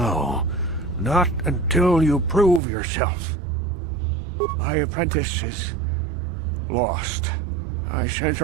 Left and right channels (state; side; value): drops out; left; at 2.6 s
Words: not until you prove yourself. My apprentice is lost. I sent